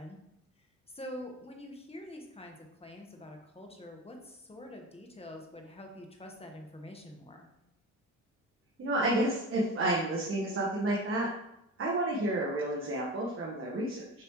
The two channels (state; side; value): normal; both; correlation 0.30